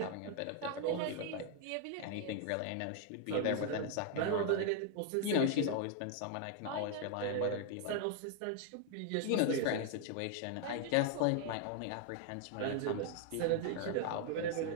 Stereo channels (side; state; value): both; different; correlation 0.00